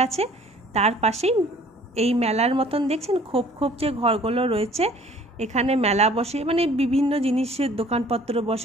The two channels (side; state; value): both; normal; correlation 0.53